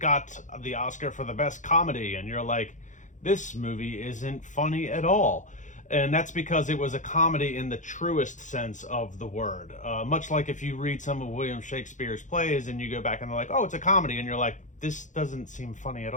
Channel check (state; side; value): late; right; 0.36 ms